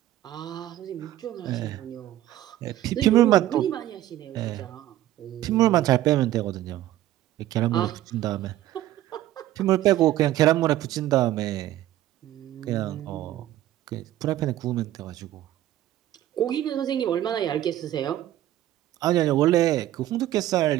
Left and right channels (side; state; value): left; quieter; 13.7 dB